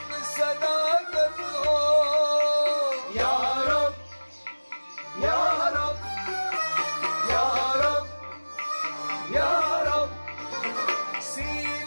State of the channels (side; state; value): both; inverted; correlation -1.00